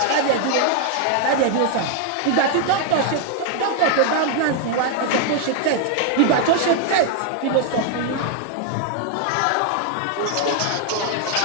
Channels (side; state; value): both; different; correlation 0.00